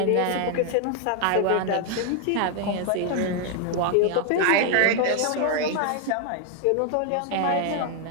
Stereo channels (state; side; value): different; both; correlation 0.00